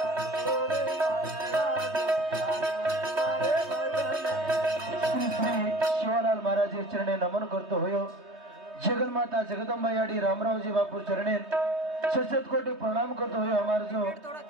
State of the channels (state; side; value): late; left; 3.2 ms